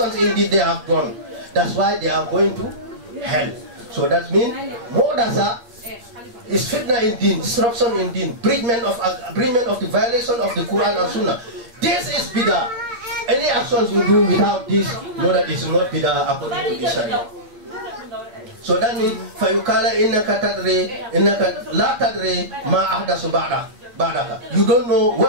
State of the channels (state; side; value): late; left; 9.0 ms